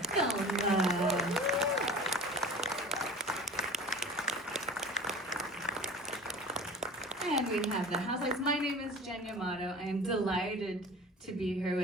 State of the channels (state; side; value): normal; both; correlation 0.39